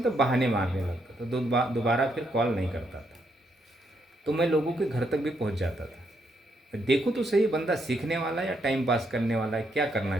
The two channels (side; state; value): both; normal; correlation 0.77